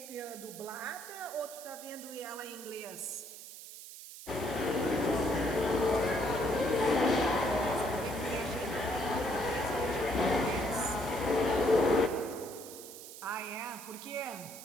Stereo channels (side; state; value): right; noise; hiss, 13 dB below the sound